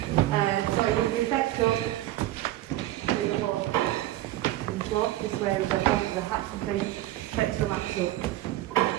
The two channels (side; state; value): left; quieter; 15.1 dB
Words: So it would be effective with the whole floor. This way with the hat would be Textile laps up.